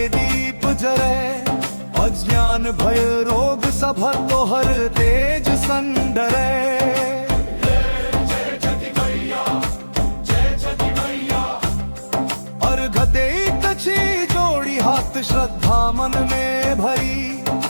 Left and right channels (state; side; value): inverted; both; correlation -1.00